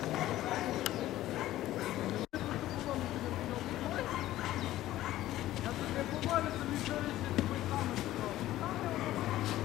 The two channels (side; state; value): right; quieter; 14.7 dB